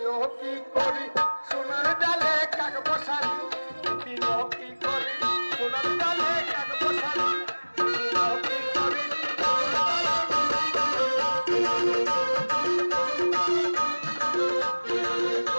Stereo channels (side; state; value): both; inverted; correlation -1.00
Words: লো কি করি সোনার ডালে কাক বসালি? দিদি লো কি করি সোনার ডালে কাক বসালি? দিদি লো কি করি